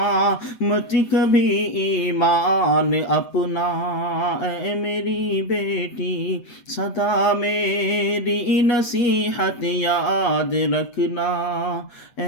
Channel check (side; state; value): right; late; 8.4 ms